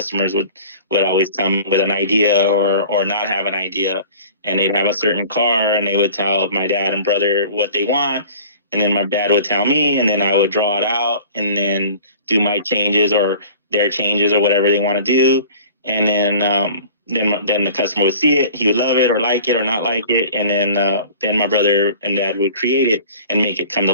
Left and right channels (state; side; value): inverted; both; correlation -0.45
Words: would always come with an idea or not have an idea, and they'd have a certain car, and they would tell my dad and brother what they want, and then my dad would tell me, and then I would draw it out and then do my changes or their changes or whatever they want to do. And then the customer would see it, he would love it or like it or not like it, and then my brother and dad would create it and make it come to